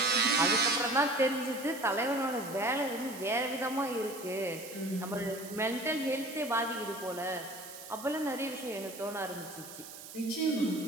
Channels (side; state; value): right; noise; hiss, 14 dB below the sound